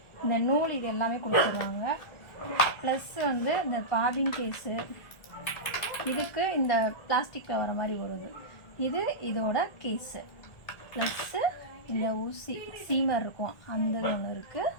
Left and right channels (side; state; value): right; late; 1.7 ms